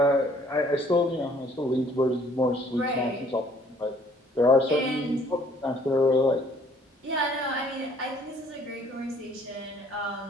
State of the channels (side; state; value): both; normal; correlation 0.60